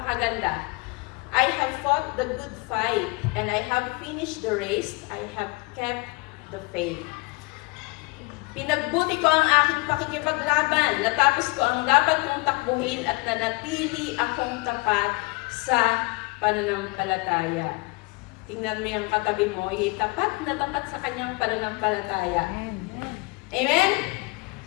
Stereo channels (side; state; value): right; quieter; 27.1 dB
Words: I have fought the good fight, and I have finished the race, I have kept the faith. Pinagbuti ko ang aking pakikipaglaban, natapos ko ang dapat kong takbuhin at nanatili akong tapat sa pananampalataya. Tingnan mo yung katabi mo, tapat na tapat sa kanyang pananampalataya. Amen?